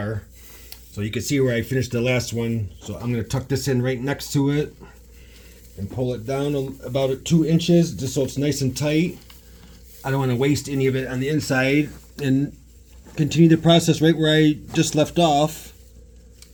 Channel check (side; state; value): both; identical; correlation 1.00